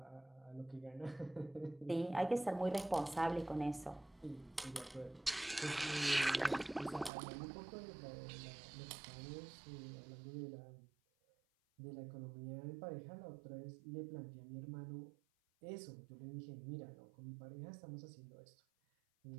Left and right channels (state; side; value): drops out; left; at 7.1 s